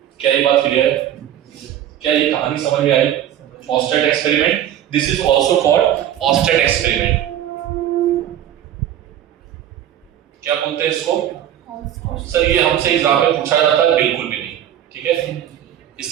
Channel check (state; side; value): quieter; left; 11.0 dB